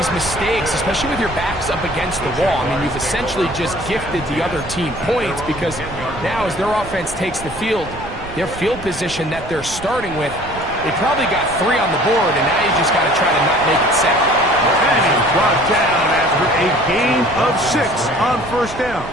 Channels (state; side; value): noise; right; rumble, 14 dB below the sound